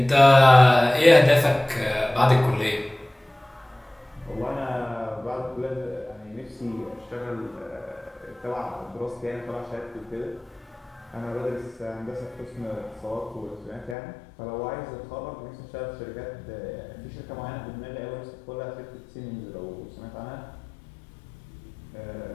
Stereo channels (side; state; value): right; drops out; at 14.0 s